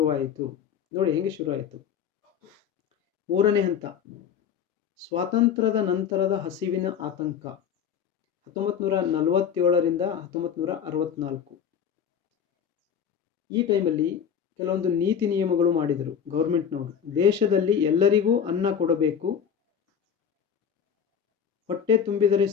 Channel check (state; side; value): quieter; right; 7.9 dB